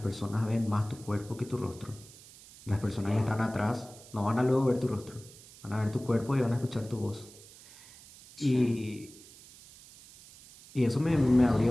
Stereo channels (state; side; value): noise; right; hiss, 21 dB below the sound